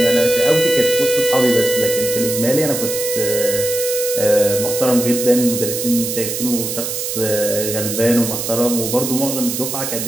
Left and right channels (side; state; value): right; noise; hiss, 4 dB below the sound